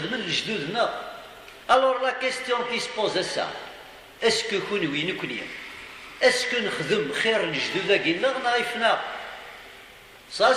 de الجدودنا. Alors la question qui se pose à ça, est-ce que كونوي نكوني est-ce que نخدم خير الجدود كينا نعرفنا؟ Ça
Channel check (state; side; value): identical; both; correlation 1.00